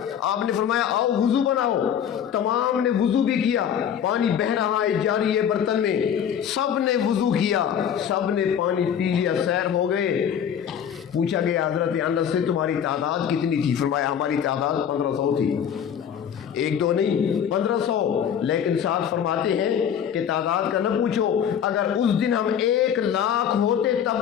آپ نے فرمایا آؤ وضو بناؤ، تمام نے وضو بھی کیا، پانی بہ رہا ہے جاری ہے برتن میں، سب نے وضو کیا، سب نے پانی پی لیا، سیر ہو گئے۔ پوچھا گیا حضرت انس سے تمہاری تعداد کتنی تھی؟ فرمایا ہماری تعداد 1500 تھی، 1-2 نہیں 1500۔ لیکن ساتھ فرماتے ہیں کہ تعداد کا نہ پوچھو، اگر اس دن ہم 1 لاکھ ہوتے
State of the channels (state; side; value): quieter; right; 8.6 dB